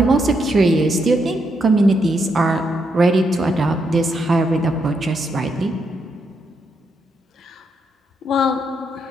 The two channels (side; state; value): both; normal; correlation 0.79